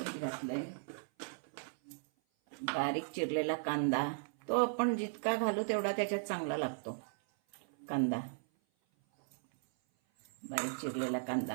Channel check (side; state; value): left; silent; 53 dB below the other